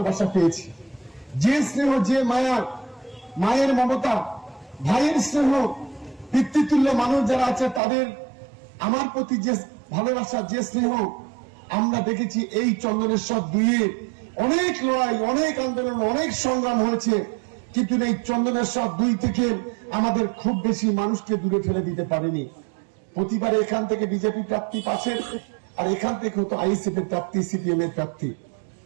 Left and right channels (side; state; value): left; drops out; at 7.8 s